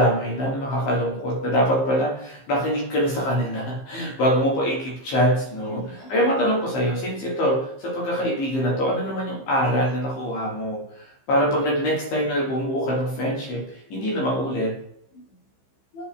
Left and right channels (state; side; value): late; right; 15 ms